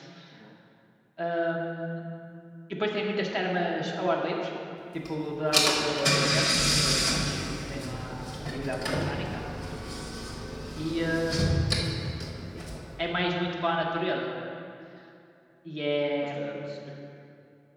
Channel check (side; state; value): both; identical; correlation 1.00